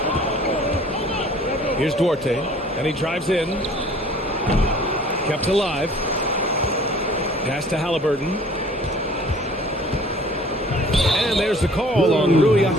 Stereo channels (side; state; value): both; normal; correlation 0.51